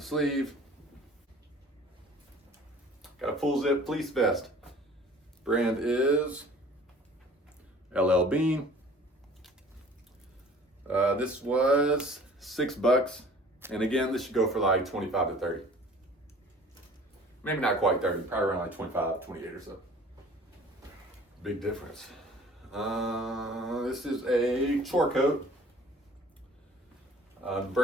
sleeve. Got a full zip fleece vest. Brand is LL Bean. This was $6, and again, this should go for like 25 to 30. Maybe not quite 30, probably around like 25, 28 or so. Big difference. This is a chore coat. The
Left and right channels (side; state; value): both; normal; correlation 0.49